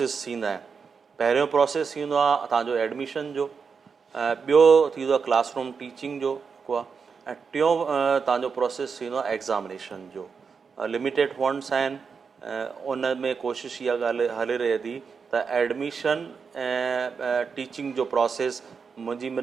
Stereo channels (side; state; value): left; quieter; 5.7 dB